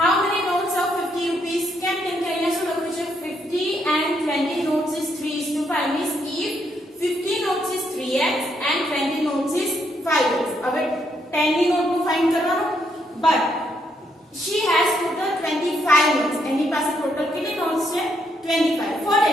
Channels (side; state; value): both; normal; correlation 0.75